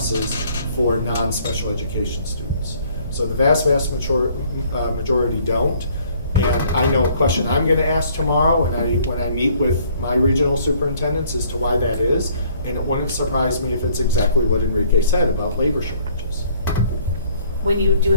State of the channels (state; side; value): inverted; both; correlation -0.60